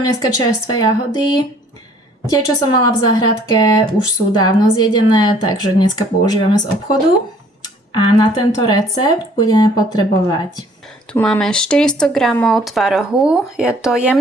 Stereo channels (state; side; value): normal; both; correlation 0.57